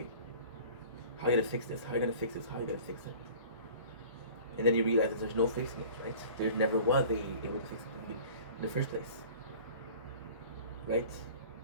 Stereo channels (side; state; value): both; inverted; correlation -0.45